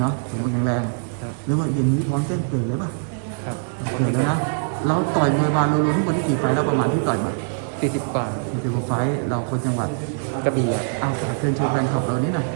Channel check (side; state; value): left; silent; digital silence